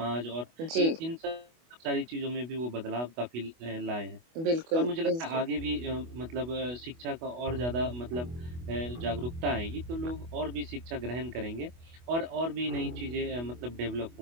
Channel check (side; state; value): left; late; 24 ms